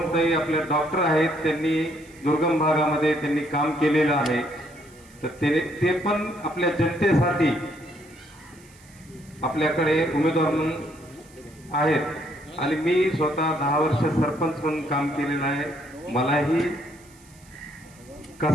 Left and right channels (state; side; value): noise; right; hiss, 26 dB below the sound